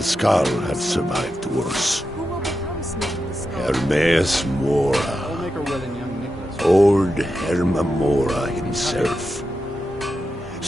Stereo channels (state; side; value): normal; both; correlation 0.88